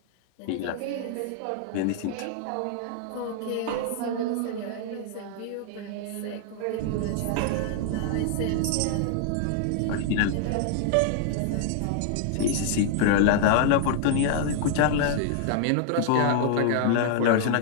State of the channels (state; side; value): different; both; correlation -0.01